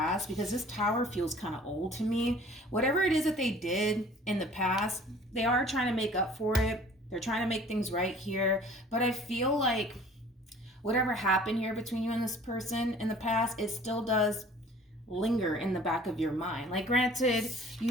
because this Tower feels kind of old to me. Whatever it is that they did in the past, they are trying to make up for it. They're trying to make things right here. But I feel like whatever happened here between you and this person in the past, it still does linger in the back of your mind. Like, granted, you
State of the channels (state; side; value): normal; both; correlation 0.50